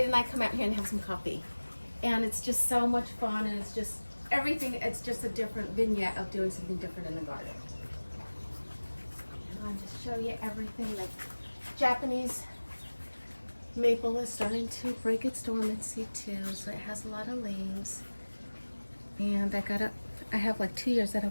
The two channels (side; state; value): both; inverted; correlation -1.00